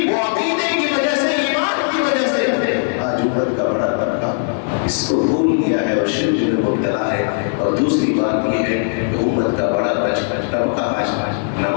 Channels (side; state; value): right; silent; digital silence